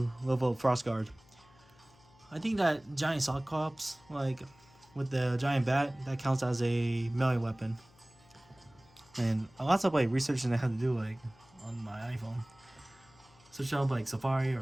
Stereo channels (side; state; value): left; noise; hum, 28 dB below the sound